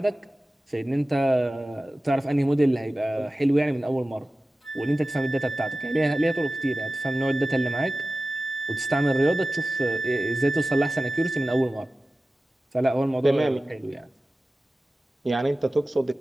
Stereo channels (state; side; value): normal; both; correlation 0.96